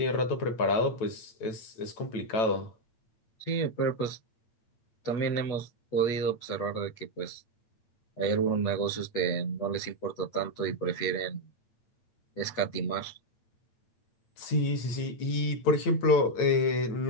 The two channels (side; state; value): right; late; 9.0 ms